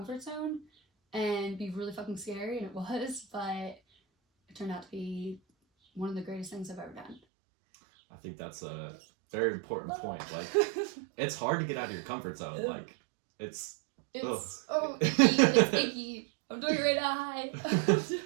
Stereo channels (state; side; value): drops out; left; at 7.2 s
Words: zone and be really fucking scary, and it was, but it turned out to be one of the greatest things I've ever done. I think that's a very important point. Like, it's hard to get out of your comfort zone. Like, it's icky. It's icky. I'm doing it right now.